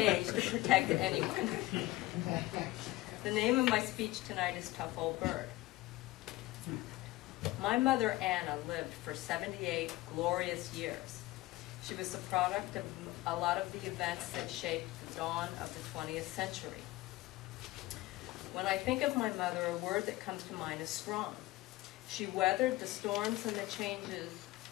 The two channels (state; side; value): quieter; right; 18.6 dB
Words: to protect anyone. The name of my speech tonight is Tough Old Bird. My mother, Anna, lived for 78 glorious years. She was the product of a lot of the events that shaped the dawn of the 20th century. When I think of my mother, a word that comes to mind is strong. She weathered the storms and the changes